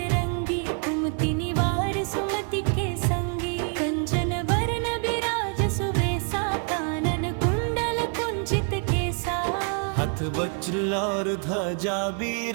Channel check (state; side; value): quieter; left; 39.0 dB